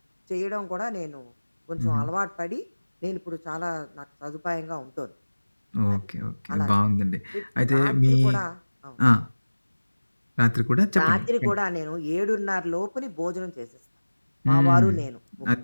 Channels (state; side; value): inverted; both; correlation -1.00